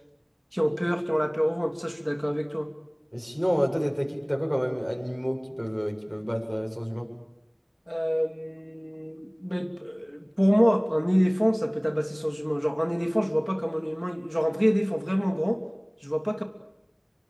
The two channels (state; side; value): identical; both; correlation 1.00